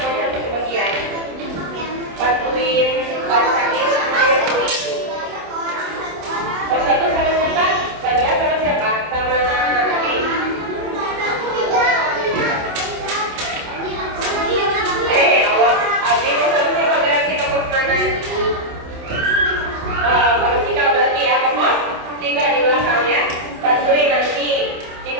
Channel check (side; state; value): left; late; 27 ms